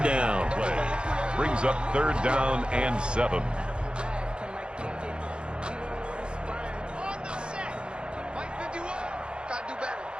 down. Brings up third down and 7.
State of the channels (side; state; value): left; late; 0.054 ms